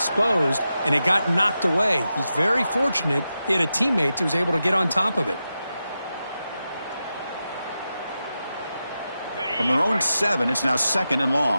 and it got knocked away. He's very fortunate he had a teammate who was able to get on top of it. From their own 7, it's now second and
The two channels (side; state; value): both; inverted; correlation -0.90